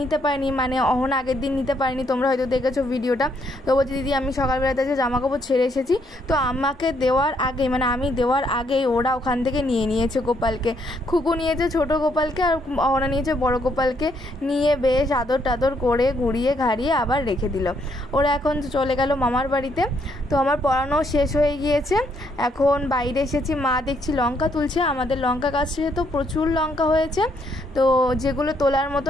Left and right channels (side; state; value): both; normal; correlation 0.72